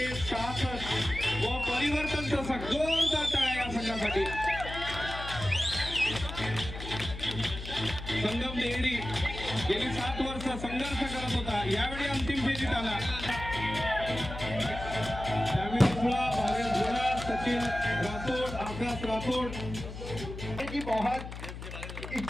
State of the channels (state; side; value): noise; left; hum, 9 dB below the sound